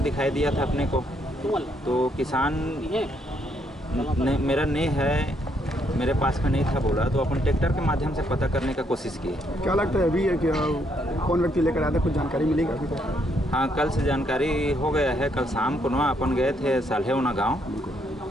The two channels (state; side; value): normal; both; correlation 0.73